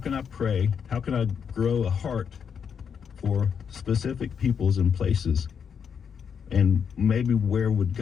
I pray? How can I grow a heart for specific peoples and places? And maybe where would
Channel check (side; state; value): right; quieter; 7.1 dB